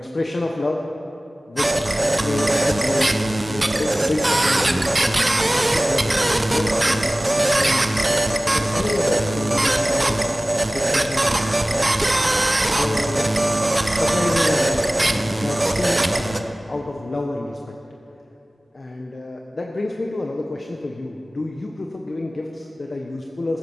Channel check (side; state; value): both; normal; correlation 0.98